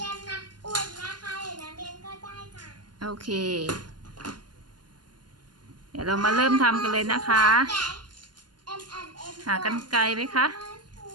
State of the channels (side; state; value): left; late; 0.71 ms